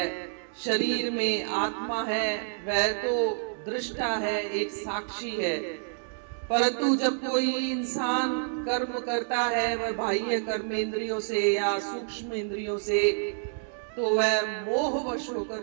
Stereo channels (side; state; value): left; silent; digital silence